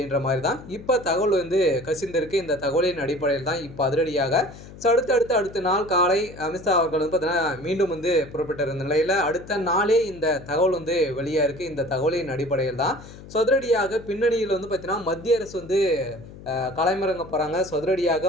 மாரி தான் இப்ப தகவல் வந்து கசிந்திருக்கு. இந்த தகவலின் அடிப்படையில் தான் இப்ப அதிரடியாக ஸோ அடுத்த நாள் காலை அமித்ஷா அவர்கள் வந்து பார்த்தீங்கன்னா, மீண்டும் வந்து புறப்பட்டிருந்த நிலையில அடுத்த நாளே இந்த தகவல் வந்து வெளியா இருக்கு. இந்த தகவலின் அடிப்படையில் தான் ஸோ அதிரடியாக பின்னணியில வந்து பார்த்தீங்கன்னா, மத்திய அரசு வந்து களமிறங்க போறாங்க. ஸோ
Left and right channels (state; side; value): noise; left; hum, 17 dB below the sound